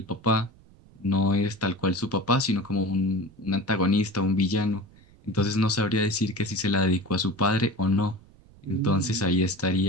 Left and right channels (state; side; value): noise; right; rumble, 26 dB below the sound